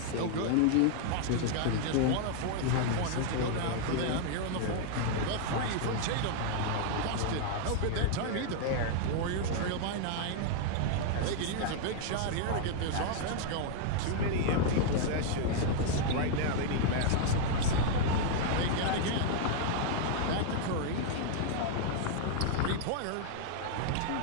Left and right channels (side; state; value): both; different; correlation -0.01